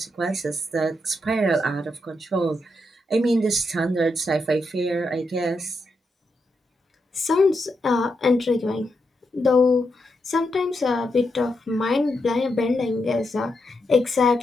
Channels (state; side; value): normal; both; correlation 0.83